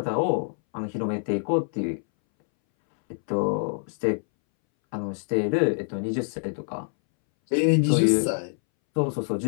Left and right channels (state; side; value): silent; right; 61 dB below the other